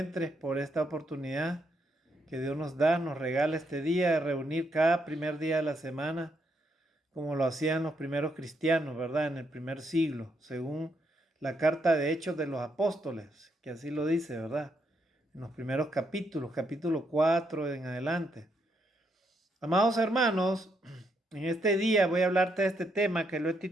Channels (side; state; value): both; normal; correlation 0.77